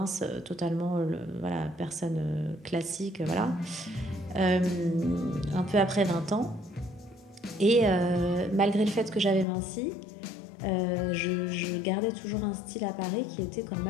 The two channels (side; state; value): right; drops out; at 9.5 s